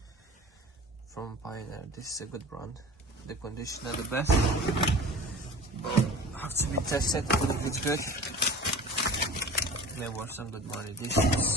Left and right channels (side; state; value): both; normal; correlation 0.38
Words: from Pioneer. This is a good brand. The conditioner the best, but have to be tested if it's good. May worth some good money. This